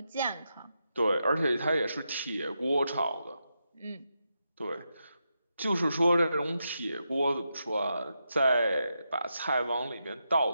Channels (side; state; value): both; inverted; correlation -0.86